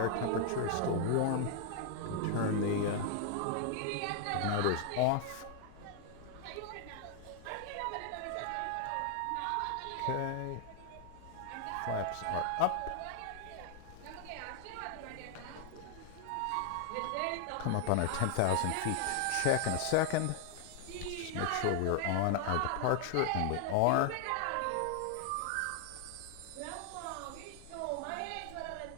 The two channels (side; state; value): both; different; correlation 0.00